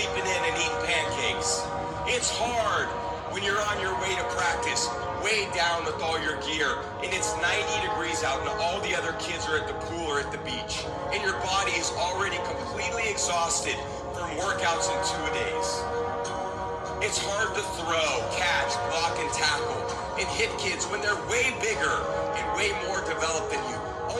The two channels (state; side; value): identical; both; correlation 1.00